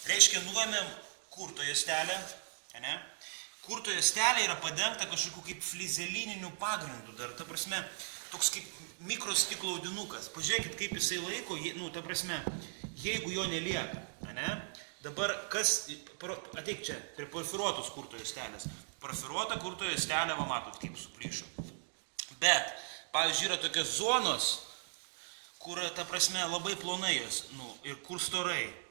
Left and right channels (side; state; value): left; silent; digital silence